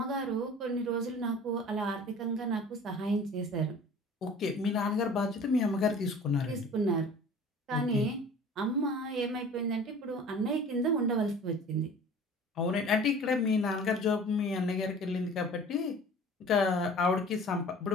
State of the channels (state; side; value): normal; both; correlation 0.44